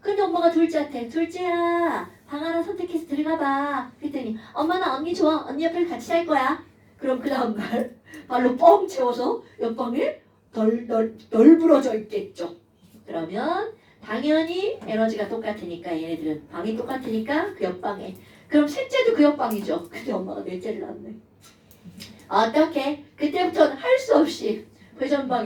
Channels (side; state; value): both; identical; correlation 1.00